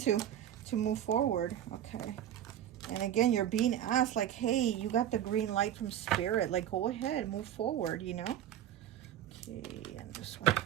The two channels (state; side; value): quieter; left; 10.9 dB